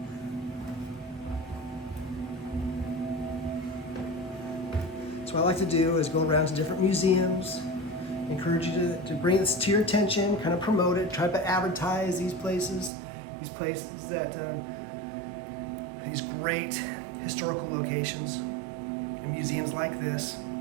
So what I like to do is go around to different museums, encourage you to bring this to your attention, kind of promote it, try to advertise these places that, these great historical locations and museums like this.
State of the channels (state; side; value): drops out; left; at 12.9 s